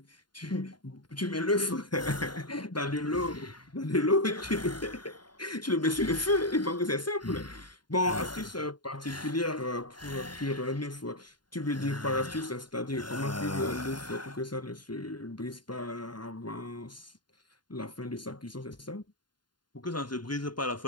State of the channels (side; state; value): right; late; 0.71 ms